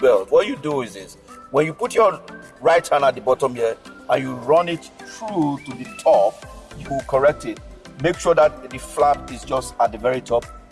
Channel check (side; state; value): both; identical; correlation 1.00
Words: What you do is this: when you put your right hand at the bottom here and you run it through to the top, you will correct it. Make sure that the flap is just at the very top,